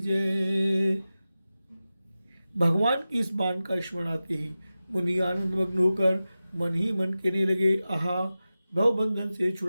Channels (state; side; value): inverted; both; correlation -0.94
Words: भगवान की इस बाण का स्मरण आते ही मुनि आनंद मग्न होकर मन ही मन कहने लगे, आहा, भवबंधन से